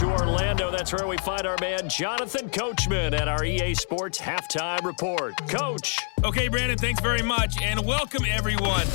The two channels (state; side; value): silent; right; 57 dB below the other